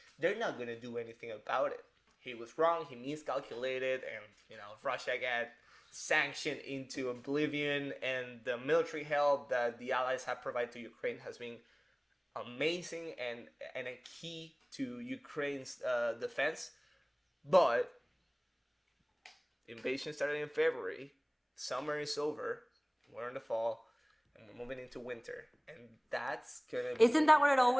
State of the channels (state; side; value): identical; both; correlation 1.00